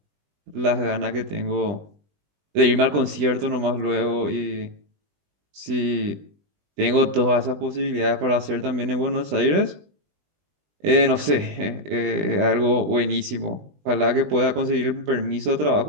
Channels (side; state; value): left; late; 20 ms